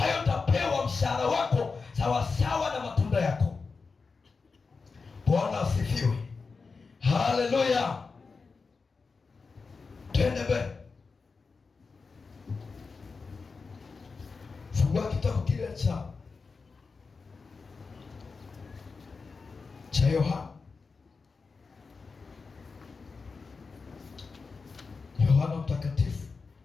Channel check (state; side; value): quieter; right; 4.6 dB